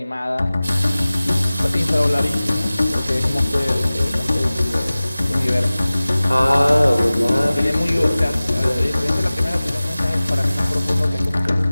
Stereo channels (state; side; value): inverted; both; correlation -0.98